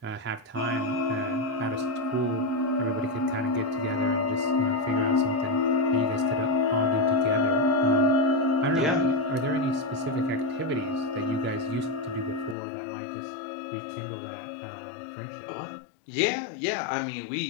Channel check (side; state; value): right; drops out; at 12.6 s